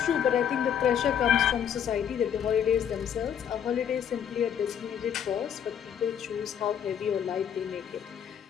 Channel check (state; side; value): quieter; right; 8.7 dB